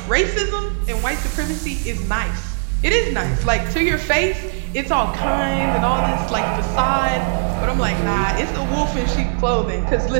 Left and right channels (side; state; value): left; silent; digital silence